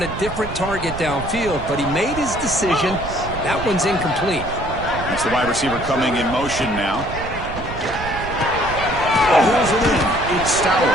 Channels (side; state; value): right; noise; rumble, 9 dB below the sound